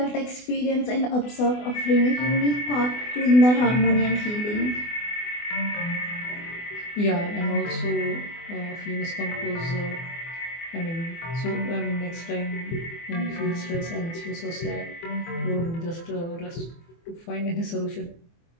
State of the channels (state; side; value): late; right; 24 ms